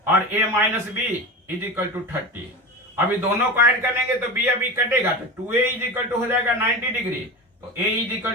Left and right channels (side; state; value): both; normal; correlation 0.27